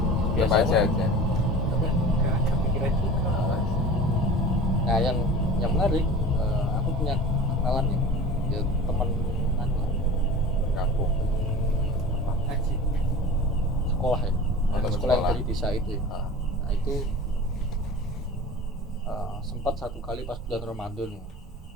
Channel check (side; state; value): both; normal; correlation 0.37